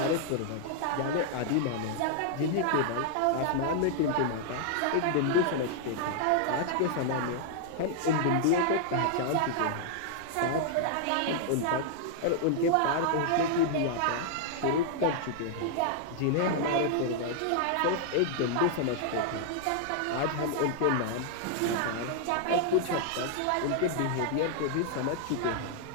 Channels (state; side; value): different; both; correlation -0.01